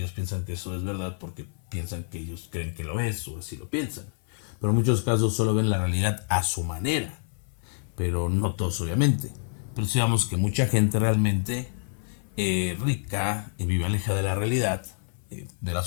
piensan que eso es verdad porque piensan que ellos creen que lo es, o así lo piensan. Pero en muchos casos solo ven la realidad a su manera, pero no todos obviamente. Pero digamos que mucha gente realmente rica y vive alejada de la realidad, de la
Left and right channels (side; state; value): right; silent; 57 dB below the other